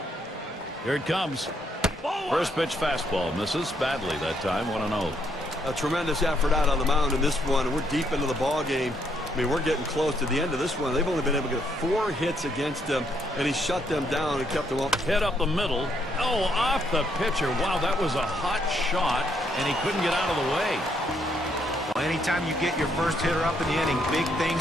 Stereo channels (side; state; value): both; normal; correlation 0.73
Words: Here it comes. First pitch fastball misses badly that time. 1-0. A tremendous effort out on the mound in this one. We're deep into the ball game. I mean, we're getting close to the end of this one. They've only been able to get 4 hits against him, and he shut them down and kept them up. Hit up the middle. Oh, off the pitcher. Wow, that was a hot shot, and he couldn't get out of the way. Well, anytime you get your first hitter up in the inning, big